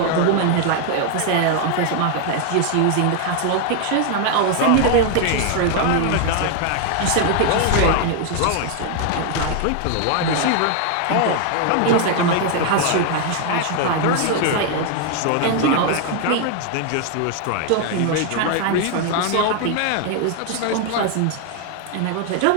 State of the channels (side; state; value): both; different; correlation 0.00